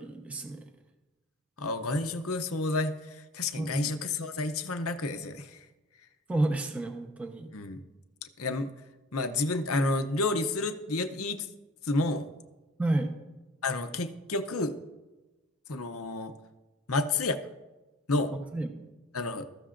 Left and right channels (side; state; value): both; normal; correlation 0.46